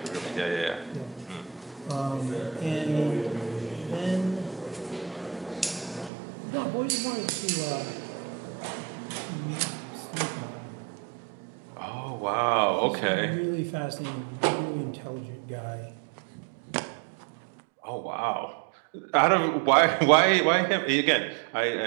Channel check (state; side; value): drops out; left; at 6.1 s